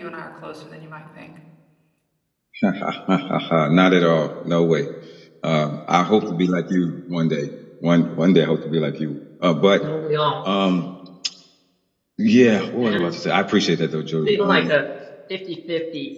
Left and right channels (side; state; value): both; identical; correlation 1.00